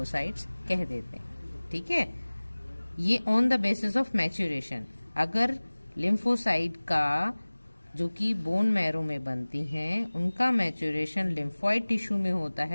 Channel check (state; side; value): inverted; both; correlation -1.00